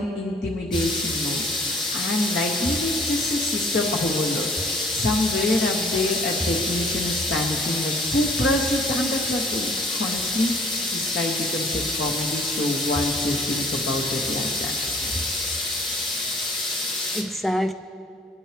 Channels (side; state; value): both; normal; correlation 0.55